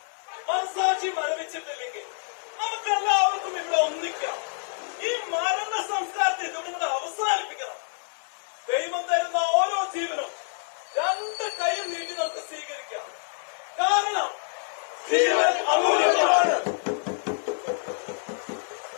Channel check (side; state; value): right; silent; 56 dB below the other